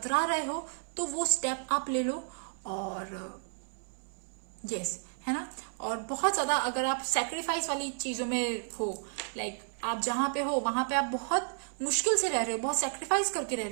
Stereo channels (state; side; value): silent; left; 56 dB below the other